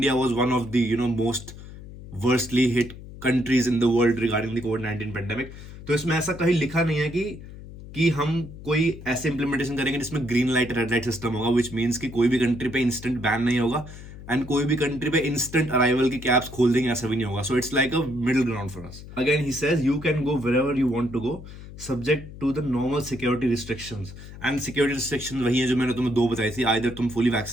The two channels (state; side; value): noise; left; hum, 15 dB below the sound